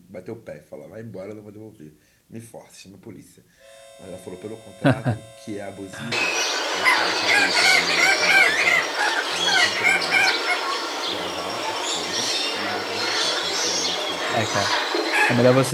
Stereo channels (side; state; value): both; identical; correlation 1.00